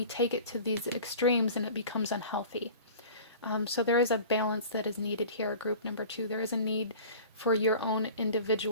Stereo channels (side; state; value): both; inverted; correlation -0.41